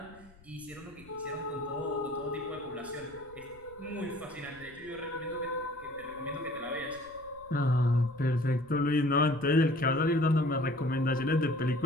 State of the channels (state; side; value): noise; left; rumble, 25 dB below the sound